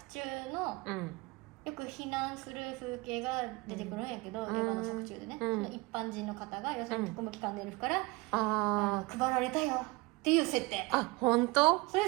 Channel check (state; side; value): quieter; left; 24.6 dB